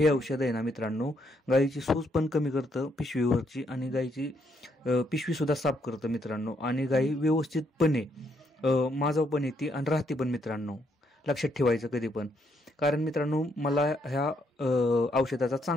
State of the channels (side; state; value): both; normal; correlation 0.74